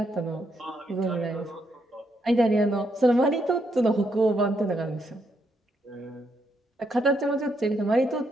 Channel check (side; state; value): both; normal; correlation 0.77